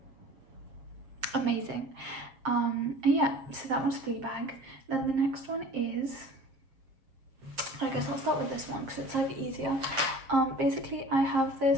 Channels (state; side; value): late; left; 7.5 ms